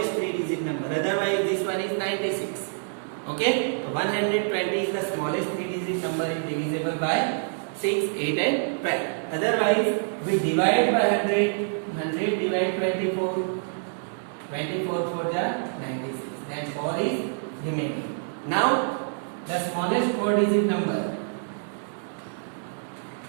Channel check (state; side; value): silent; left; digital silence